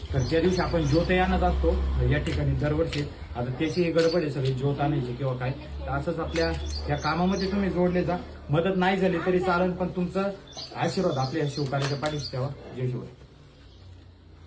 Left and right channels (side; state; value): both; identical; correlation 1.00